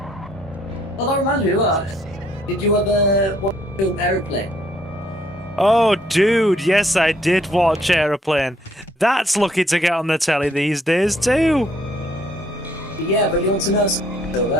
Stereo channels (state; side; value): normal; both; correlation 0.66